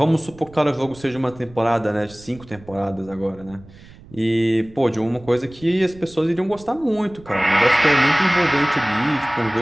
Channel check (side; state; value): right; noise; rumble, 22 dB below the sound